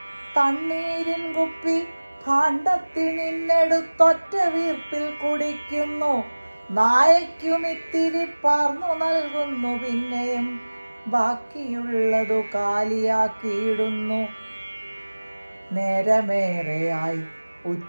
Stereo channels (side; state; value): both; inverted; correlation -1.00